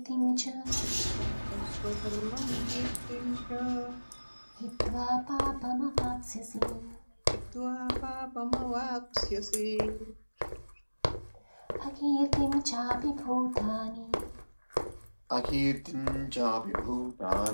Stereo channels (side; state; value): both; inverted; correlation -1.00